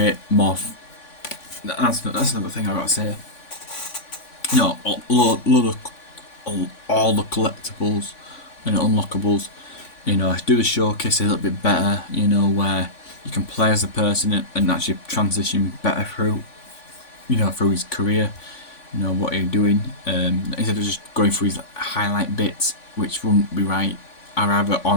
more. That's another thing I gotta say. All the collectibles and unlockables. Do the showcase a little bit better. Where you can play as a person and actually transition better through his career. What you're doing. Instead of just going through his highlight bits, which wouldn't be right. I'd rather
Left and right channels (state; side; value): late; right; 3.5 ms